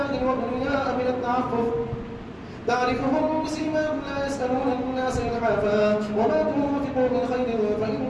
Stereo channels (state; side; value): identical; both; correlation 1.00